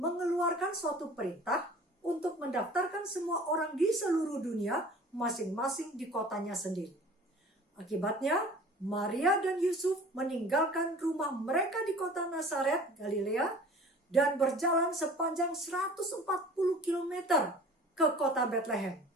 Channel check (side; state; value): both; normal; correlation 0.45